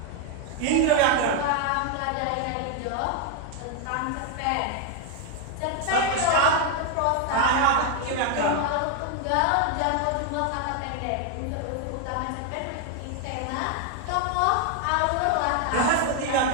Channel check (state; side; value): different; both; correlation 0.01